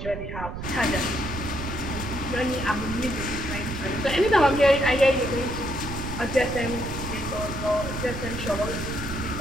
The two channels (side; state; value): right; noise; rumble, 7 dB below the sound